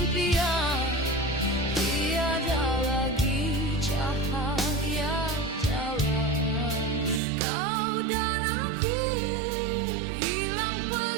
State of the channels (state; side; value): drops out; left; at 7.2 s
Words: tiada lagi cahaya jalan. Kau dan aku hilang